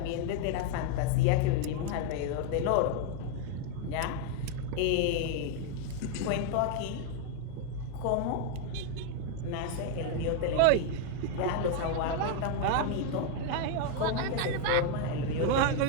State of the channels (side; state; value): both; different; correlation 0.00